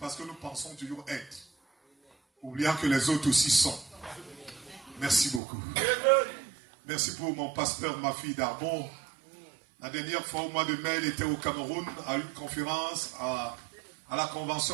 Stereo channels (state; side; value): drops out; left; at 5.4 s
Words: que nous pensons toujours être, oubliant que les autres aussi sont. Merci beaucoup. Merci pour mon pasteur, ma fille d'Arbon. La dernière fois au mois de mai, elle était au Cameroun à une conférence à la